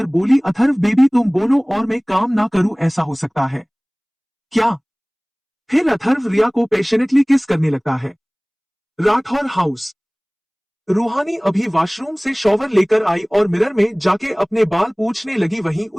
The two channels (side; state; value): both; identical; correlation 1.00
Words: बोली, अथर्व बेबी तुम बोलो और मैं काम ना करूं, ऐसा हो सकता है क्या। फिर अथर्व रिया को पैशनेटली किस करने लगता है। राठौर हाउस। रूहानी अभी वॉशरूम से शॉवर लेकर आई और मिरर में जाके अपने बाल पूछने लगी। वहीं